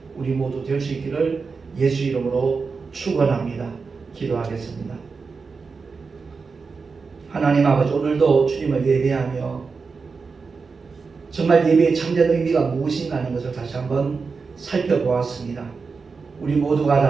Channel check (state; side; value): quieter; left; 4.8 dB